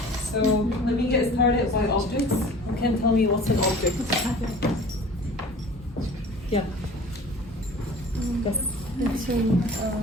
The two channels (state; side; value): normal; both; correlation 0.44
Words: So let me get started by objects. You can tell me what's an object? Yeah. It's